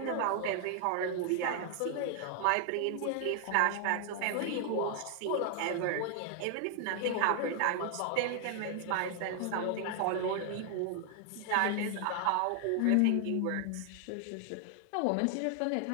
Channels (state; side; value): different; both; correlation 0.00